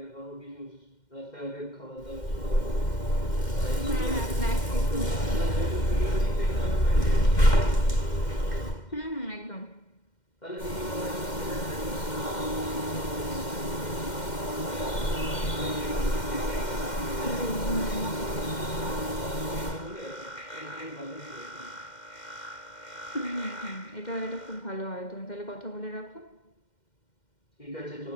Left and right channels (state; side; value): late; right; 2.1 ms